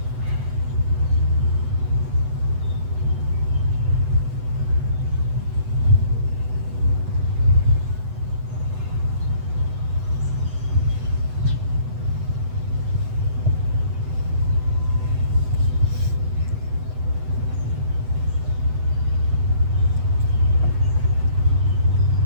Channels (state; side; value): late; left; 8.0 ms